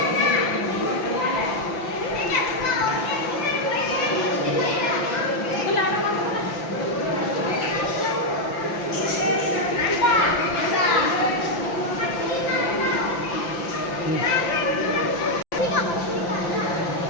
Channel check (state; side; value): late; right; 5.9 ms